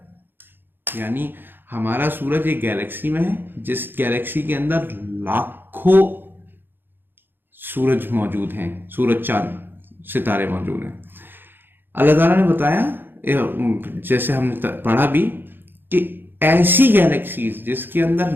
यानी हमारा सूरज एक गैलेक्सी में है, जिस गैलेक्सी के अंदर लाखों सूरज मौजूद हैं, सूरज चांद सितारे मौजूद हैं। अल्लाह ताला ने बताया, जैसे हमने पढ़ा भी, कि ऐसी गैलेक्सीज जिसके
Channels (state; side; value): late; left; 0.099 ms